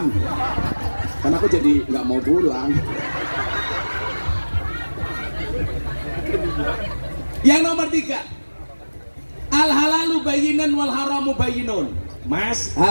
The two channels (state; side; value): inverted; both; correlation -1.00